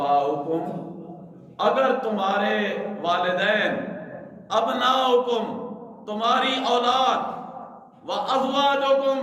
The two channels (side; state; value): both; identical; correlation 1.00